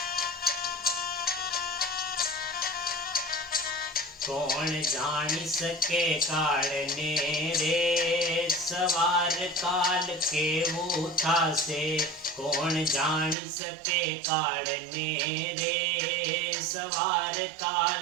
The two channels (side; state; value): left; drops out; at 13.4 s